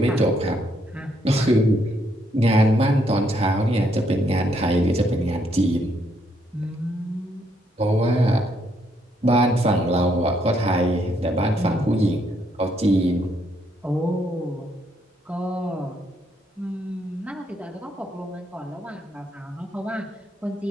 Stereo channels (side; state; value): both; normal; correlation 0.73